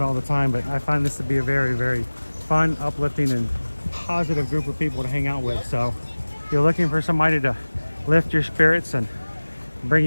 the time, but I find this to be a very, very fun, uplifting, and positive group of people to hang out with. So if you're looking for somebody to lift your spirits and bring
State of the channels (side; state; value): both; inverted; correlation -1.00